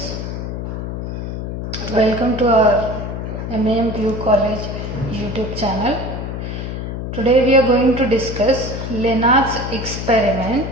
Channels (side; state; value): left; noise; hum, 5 dB below the sound